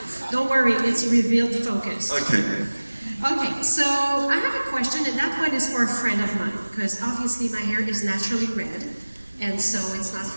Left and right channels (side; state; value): both; inverted; correlation -1.00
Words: Don't worry, it's revealed focus. Okay. Okay, so I have a question, and that one is for a friend of mine, because obviously my hair is naturally red, and so it's not